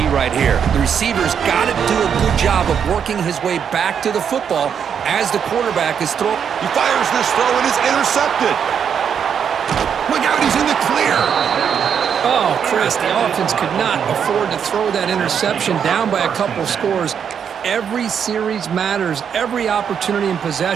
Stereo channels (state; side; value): quieter; left; 7.7 dB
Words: right here. The receiver's got to do a good job of working his way back to the football as the quarterback is throwing. He fires this throw and is intercepted. Look out, he's in the clear. Oh, Chris, the offense could not afford to throw that interception down by a couple scores. Every series matters. Every opportunity in